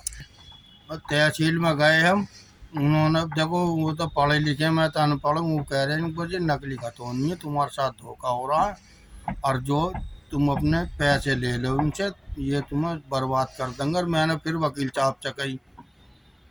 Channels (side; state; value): both; identical; correlation 1.00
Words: और तहसील में गए हम, उन्होंने देखो वो तो पढ़े लिखे, मैं तो अनपढ़ हूँ, वो कह रहे हैं कि ये नकली खतौनी है, तुम्हारे साथ धोखा हो रहा है और जो तुम अपने पैसे ले लो उनसे, ये तुम्हें बर्बाद कर देंगे। और मैंने फिर वकील साहब से कही,